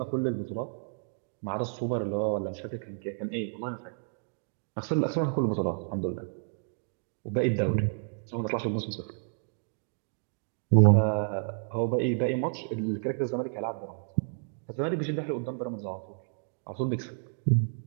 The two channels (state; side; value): silent; left; digital silence